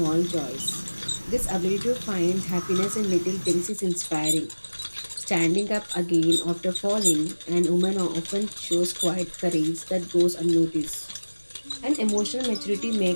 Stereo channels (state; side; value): inverted; both; correlation -1.00